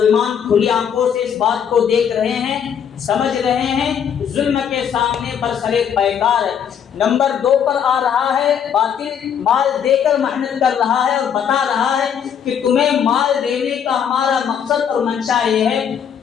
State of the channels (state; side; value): quieter; right; 8.1 dB